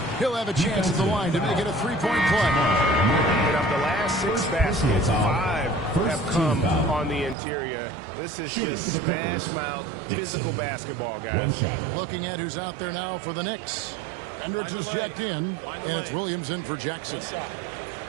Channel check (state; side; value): drops out; left; at 7.4 s